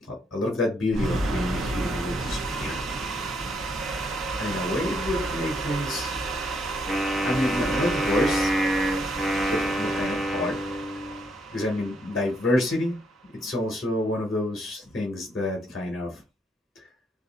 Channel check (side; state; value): both; normal; correlation 0.74